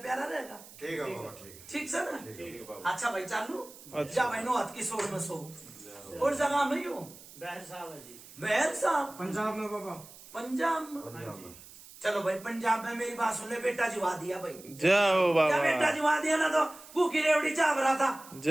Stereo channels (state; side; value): noise; right; hiss, 19 dB below the sound